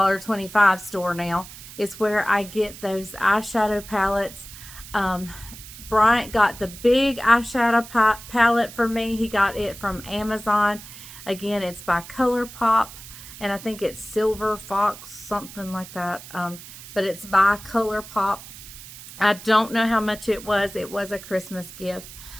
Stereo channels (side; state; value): right; noise; hiss, 15 dB below the sound